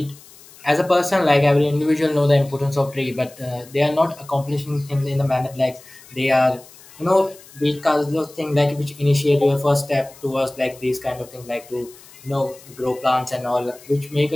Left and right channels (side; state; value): left; noise; hiss, 22 dB below the sound